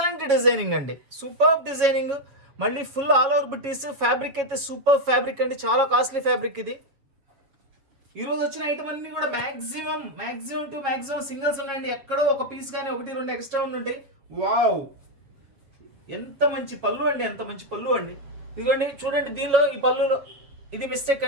డిజైనింగ్ అండి, సూపర్ డిజైనింగ్. మళ్ళీ ఫుల్ ఆల్ ఓవర్ బుటీస్. ఫ్యాబ్రిక్ అయితే సూపర్ ఫ్యాబ్రిక్ అండి, చాలా కాస్ట్లీ ఫ్యాబ్రిక్ ఇది. ఈరోజు వచ్చిన ఐటమ్ అన్ని కూడా మ్యాక్సిమం టు మ్యాక్సిమం సింగిల్స్ ఉన్నాయండి. ఎక్కడో ఒక పీస్ కానీ 1-2 ఎక్స్ట్రా ఉంటాయి. వావ్, ఎంత మంచి పళ్ళు అండి, ఎంత మంచి పళ్ళు అండి. ఇదిగోండి చూడండి, దీనిలో ఈ పళ్ళులో ఇది మిస్టేక్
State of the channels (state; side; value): late; left; 7.5 ms